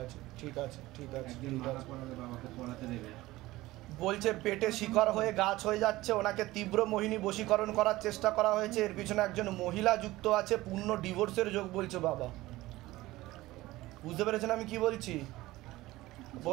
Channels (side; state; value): left; quieter; 18.1 dB